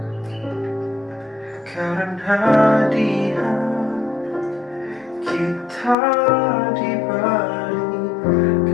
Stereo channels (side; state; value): right; drops out; at 6.0 s